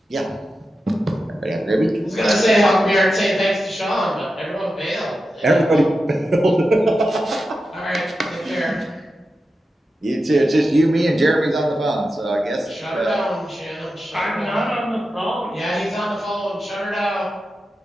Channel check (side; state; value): both; normal; correlation 0.91